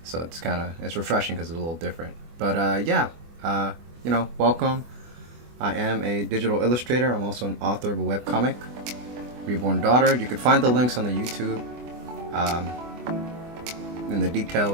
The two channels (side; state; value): left; late; 24 ms